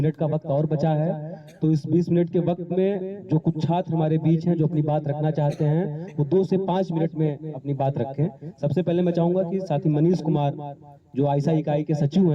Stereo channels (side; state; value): both; identical; correlation 1.00